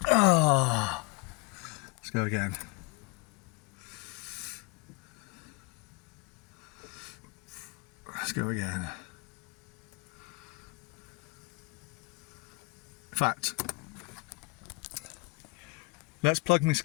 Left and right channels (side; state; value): right; quieter; 27.3 dB